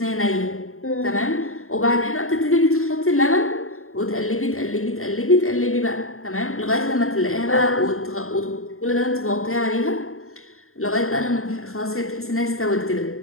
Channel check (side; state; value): right; late; 0.62 ms